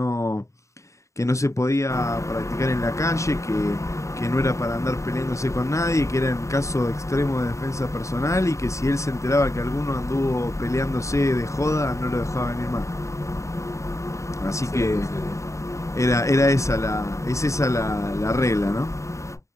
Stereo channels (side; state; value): right; late; 0.15 ms